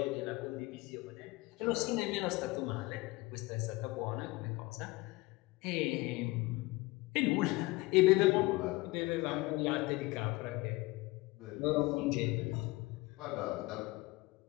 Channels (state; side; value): quieter; right; 21.8 dB